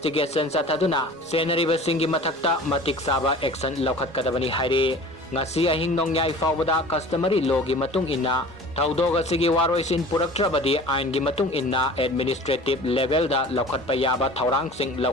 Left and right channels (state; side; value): normal; both; correlation 0.42